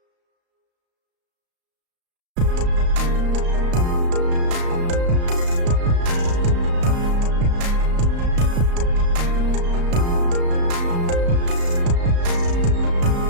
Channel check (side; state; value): left; late; 34 ms